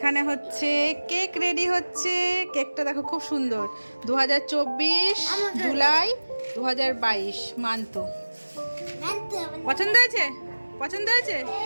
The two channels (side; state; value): both; inverted; correlation -1.00